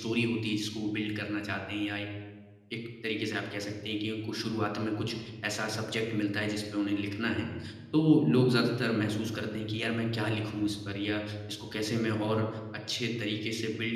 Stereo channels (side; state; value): both; identical; correlation 1.00